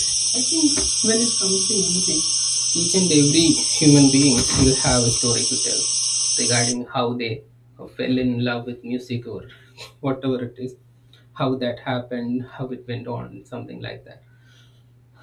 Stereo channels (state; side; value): identical; both; correlation 1.00